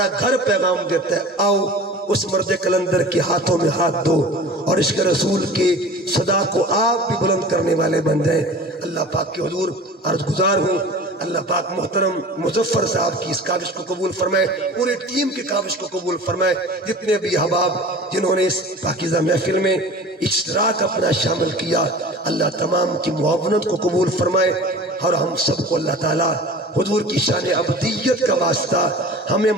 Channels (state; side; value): normal; both; correlation 0.39